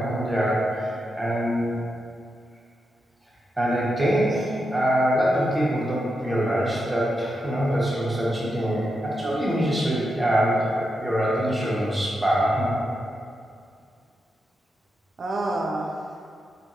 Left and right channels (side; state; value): both; normal; correlation 0.86